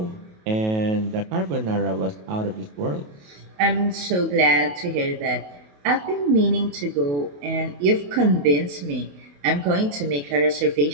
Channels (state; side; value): late; left; 28 ms